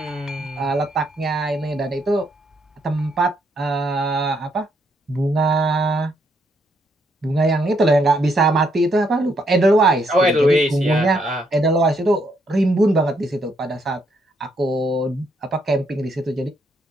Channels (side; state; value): both; normal; correlation 0.74